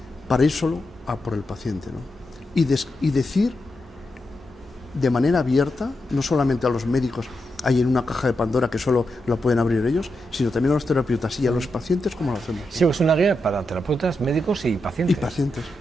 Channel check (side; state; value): both; normal; correlation 0.86